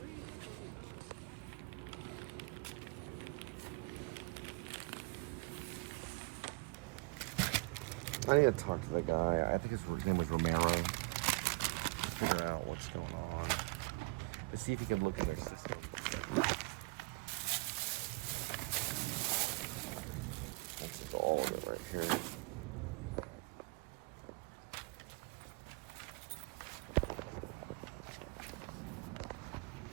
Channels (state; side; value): quieter; left; 25.5 dB